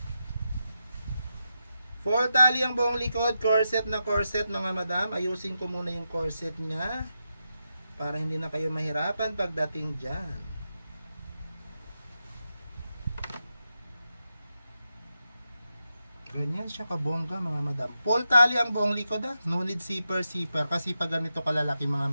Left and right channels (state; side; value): inverted; both; correlation -0.87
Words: Full tali ang buong likod, corset na corset mga madam. Ayusin ko muna yung corset niya para hindi na kayo mahirapan pagdating dyan. Ganyan siya kabongga mga madam. Full tali ang buong likod No need zipper. Kasi pag ganito kalalaki mga